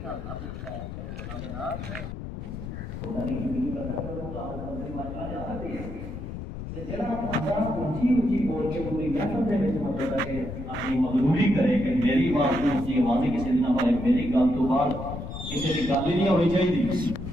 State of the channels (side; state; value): left; noise; rumble, 8 dB below the sound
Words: مغروری کرے کہ میری بات کو اسی آوازی کسی نہ پائے، میری گل تو بعد کسی کی گل ہی نہیں ہونی